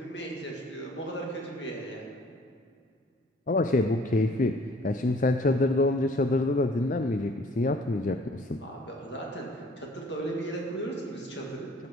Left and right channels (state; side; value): normal; both; correlation 0.55